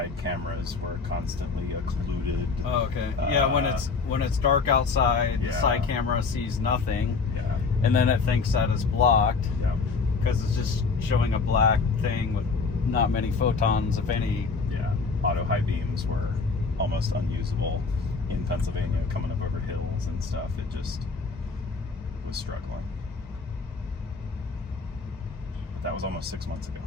cameras were constantly occluded. Oh, okay. Yeah, when it's dark outside, the side camera sees nothing. Yeah. And then it thinks that it's blocked. Yeah. Because it's just showing a black thing with not many photons, if any. Yeah. Auto high beams were almost unusable in Pennsylvania, coming up over hills and stuff. It just was struggling. But that was almost 6 months ago.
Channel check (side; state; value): right; quieter; 4.6 dB